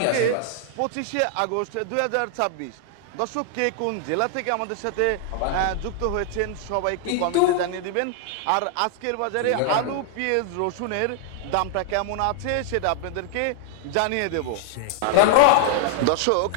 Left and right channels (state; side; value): different; both; correlation 0.00